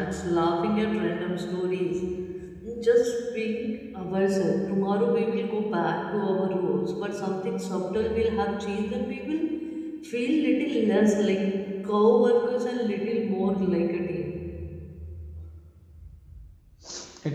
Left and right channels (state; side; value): identical; both; correlation 1.00